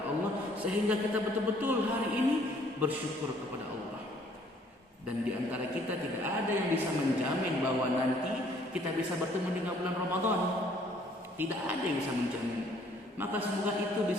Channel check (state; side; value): normal; both; correlation 0.61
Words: Allah sehingga kita betul-betul hari ini bersyukur kepada Allah. Dan di antara kita tidak ada yang bisa menjamin bahwa nanti kita bisa bertemu dengan bulan Ramadan. Tidak ada yang bisa menjamin. Maka semoga itu